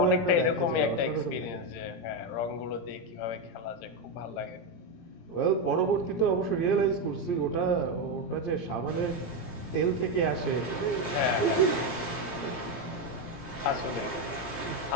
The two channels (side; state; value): right; late; 17 ms